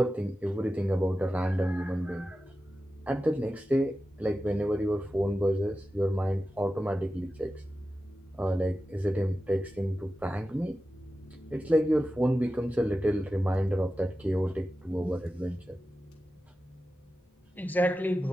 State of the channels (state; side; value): normal; both; correlation 0.93